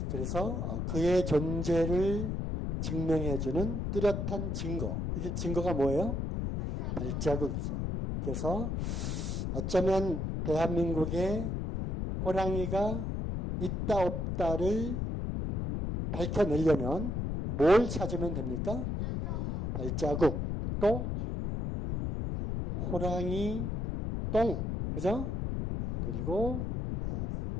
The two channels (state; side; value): noise; left; rumble, 1 dB below the sound